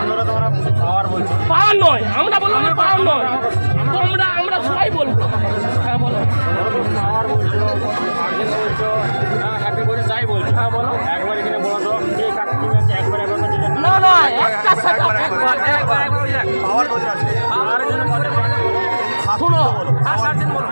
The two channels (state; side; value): inverted; both; correlation -1.00